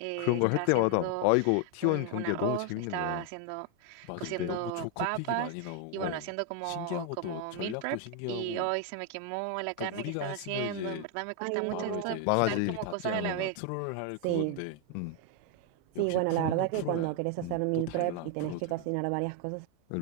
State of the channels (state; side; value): different; both; correlation 0.00